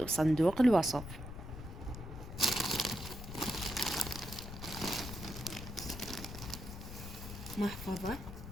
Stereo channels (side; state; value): left; noise; rumble, 10 dB below the sound